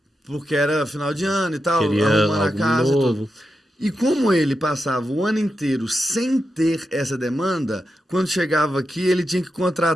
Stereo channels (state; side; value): normal; both; correlation 0.88